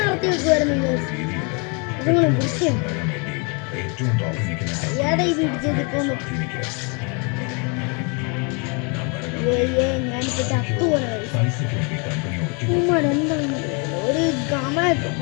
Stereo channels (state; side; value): quieter; right; 33.8 dB